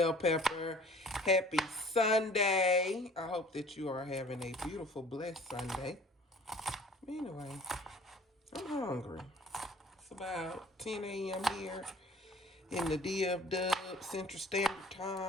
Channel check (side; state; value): both; normal; correlation 0.50